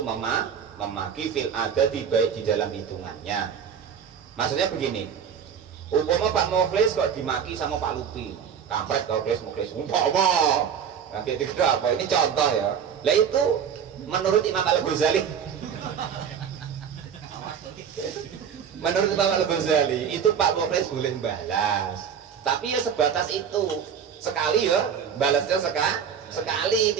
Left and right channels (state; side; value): quieter; left; 7.7 dB